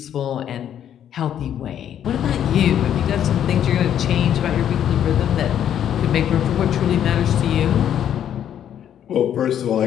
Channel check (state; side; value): quieter; right; 9.9 dB